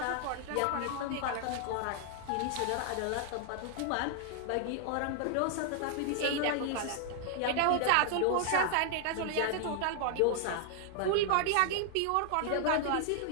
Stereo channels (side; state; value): both; different; correlation 0.00